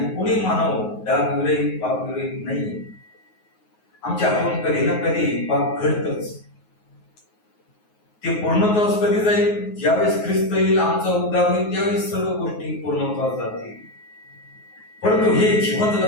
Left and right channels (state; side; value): late; right; 9.4 ms